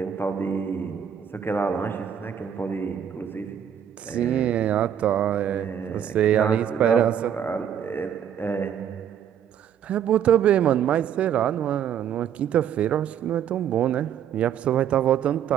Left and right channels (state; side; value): quieter; left; 9.1 dB